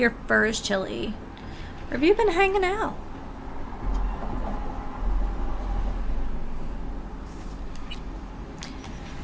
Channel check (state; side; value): identical; both; correlation 1.00